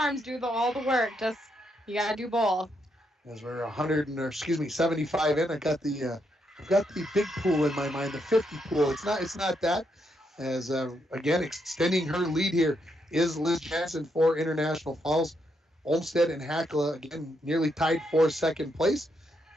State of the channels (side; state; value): both; normal; correlation 0.79